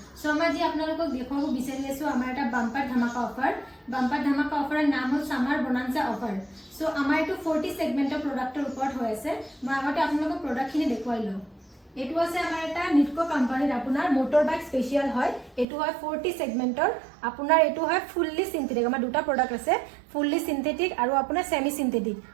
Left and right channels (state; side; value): drops out; left; at 15.7 s